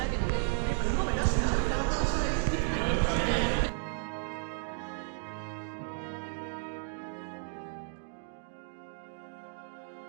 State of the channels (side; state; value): left; silent; 56 dB below the other